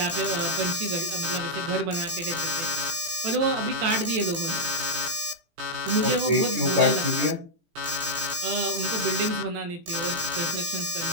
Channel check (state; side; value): late; left; 18 ms